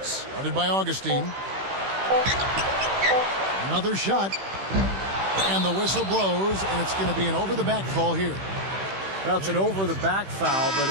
guarded by Augustine. Another shot. And the whistle blows, and it's going to be an over-the-back call here. Well, it's an over-the-back foul, but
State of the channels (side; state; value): left; late; 16 ms